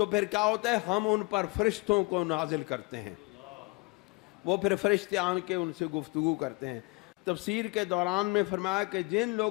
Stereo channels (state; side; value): quieter; right; 27.3 dB